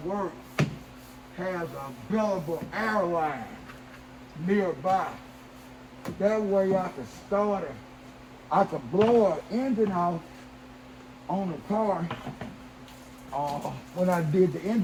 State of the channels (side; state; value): both; identical; correlation 1.00